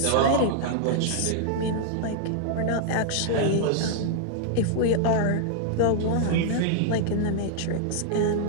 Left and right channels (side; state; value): both; different; correlation -0.01